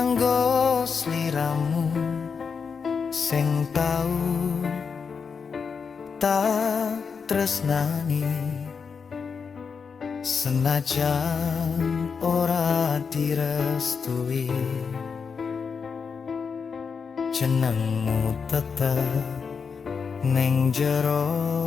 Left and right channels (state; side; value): quieter; right; 5.7 dB